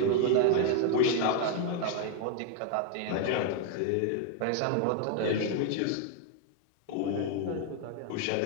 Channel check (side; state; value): both; different; correlation 0.01